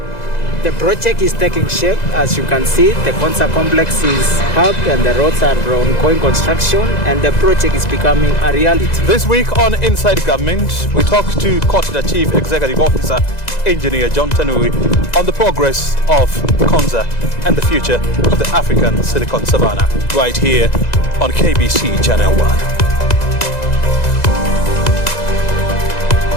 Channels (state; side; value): late; right; 2.0 ms